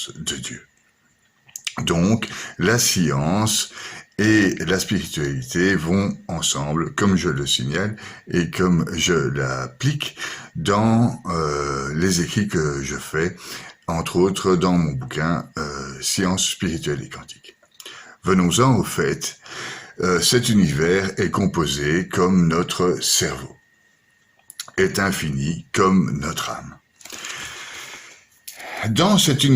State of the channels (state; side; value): identical; both; correlation 1.00